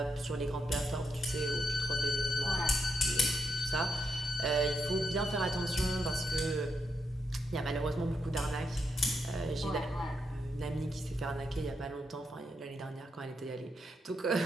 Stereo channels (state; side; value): normal; both; correlation 0.81